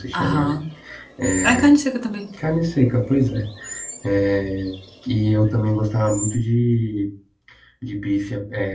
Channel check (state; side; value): identical; both; correlation 1.00